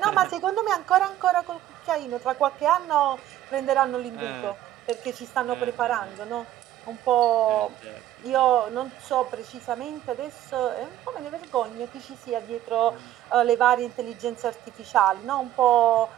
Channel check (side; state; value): left; quieter; 13.0 dB